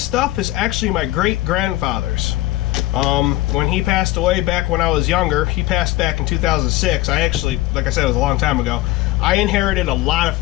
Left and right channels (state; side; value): quieter; right; 17.4 dB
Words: stuff is actually my great-grandfather's. When he passed away back when I was younger, he passed back in 2006. I actually, like I said, it was a long time ago. I inherited a lot of